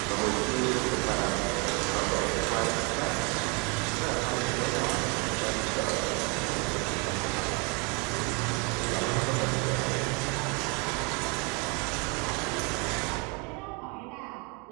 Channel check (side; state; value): left; quieter; 30.2 dB